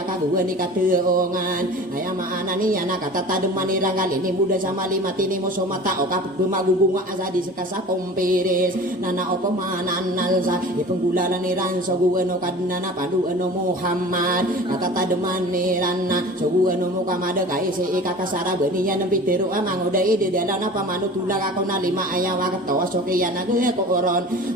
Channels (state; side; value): normal; both; correlation 0.39